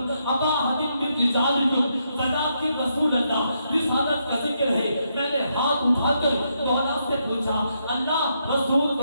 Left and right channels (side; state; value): both; inverted; correlation -0.79